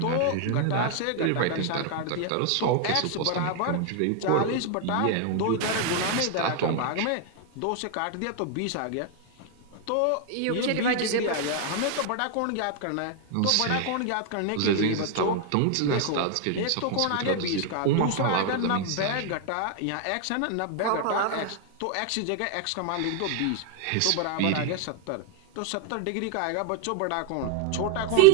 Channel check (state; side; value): different; both; correlation 0.00